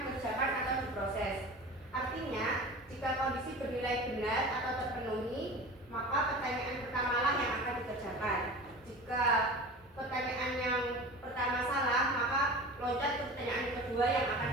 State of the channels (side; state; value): both; normal; correlation 0.35